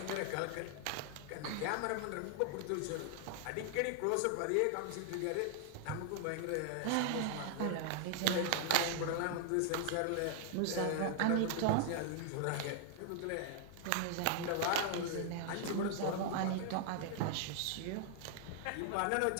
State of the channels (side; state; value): both; different; correlation 0.00